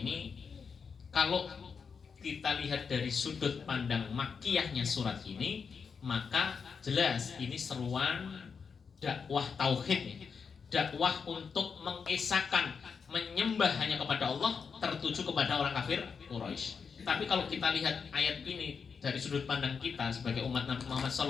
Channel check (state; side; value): quieter; right; 5.9 dB